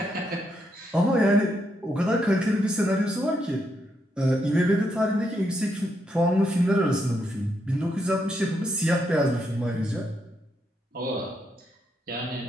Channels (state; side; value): normal; both; correlation 0.79